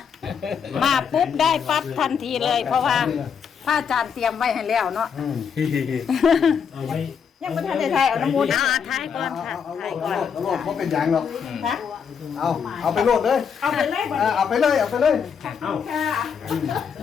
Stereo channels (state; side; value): quieter; right; 7.0 dB